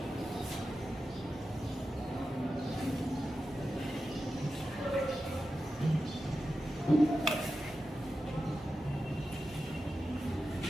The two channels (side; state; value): both; normal; correlation 0.91